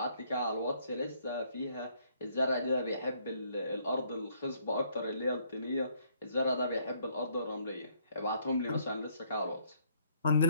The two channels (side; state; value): both; inverted; correlation -0.67